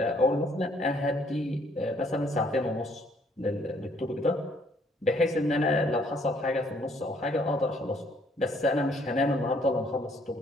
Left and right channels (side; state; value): both; normal; correlation 0.65